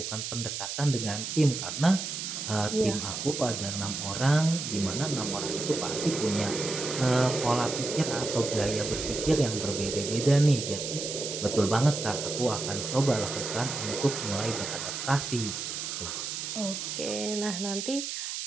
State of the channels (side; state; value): right; noise; hiss, 5 dB below the sound